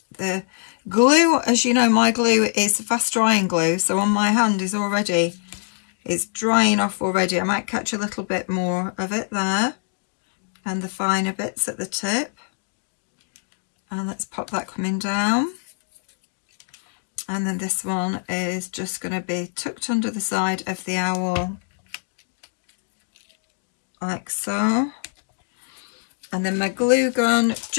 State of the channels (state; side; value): silent; right; 63 dB below the other